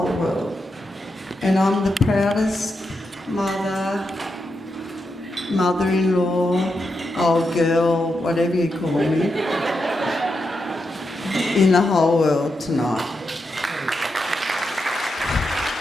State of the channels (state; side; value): normal; both; correlation 0.86